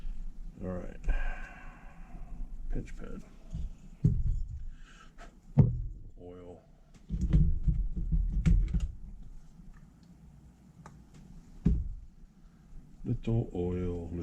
All right. Pinch pen. Oil. Little oil,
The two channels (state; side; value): identical; both; correlation 1.00